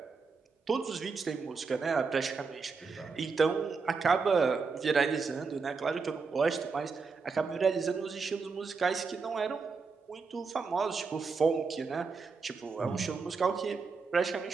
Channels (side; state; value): left; quieter; 4.8 dB